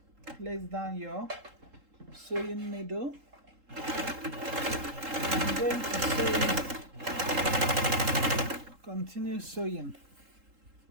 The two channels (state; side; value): late; left; 3.8 ms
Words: place down your sewing needle. I'm going to sew it. Continue sewing.